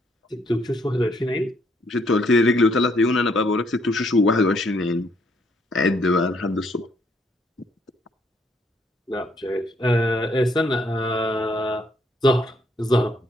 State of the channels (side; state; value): both; normal; correlation 0.70